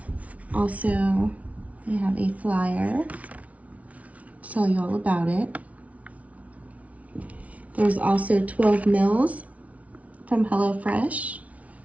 Also, we have a flyer. Tell you all about it. There's also 12 meals from HelloFresh.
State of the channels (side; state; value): left; late; 0.067 ms